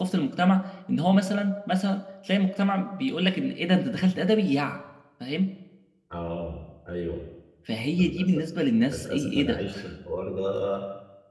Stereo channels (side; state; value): both; identical; correlation 1.00